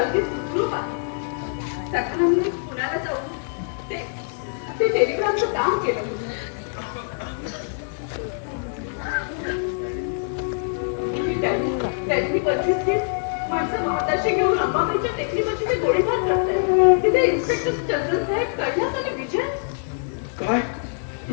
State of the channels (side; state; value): right; silent; digital silence